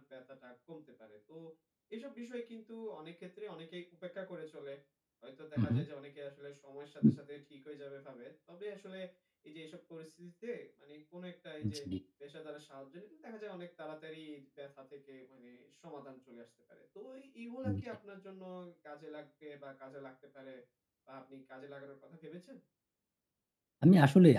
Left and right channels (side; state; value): both; identical; correlation 1.00